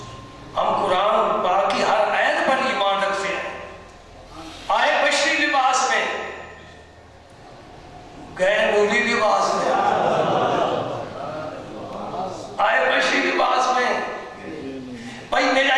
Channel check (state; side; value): identical; both; correlation 1.00